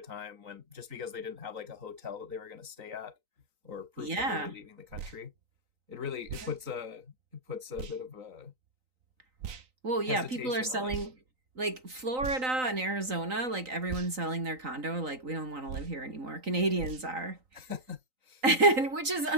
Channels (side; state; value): left; late; 3.9 ms